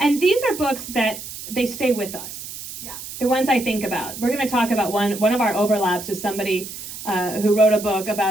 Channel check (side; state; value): right; noise; hiss, 11 dB below the sound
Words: these are books that they stay with us. yes. The ones I think about. We're going to talk about one of our overlaps is somebody who wrote a book